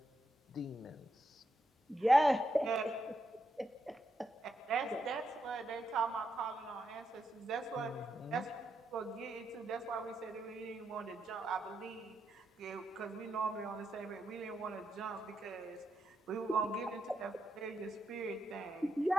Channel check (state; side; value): normal; both; correlation 0.83